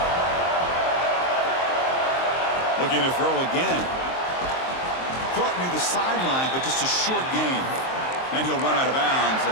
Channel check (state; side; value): late; right; 23 ms